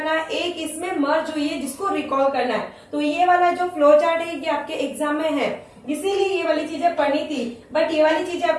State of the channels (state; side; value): identical; both; correlation 1.00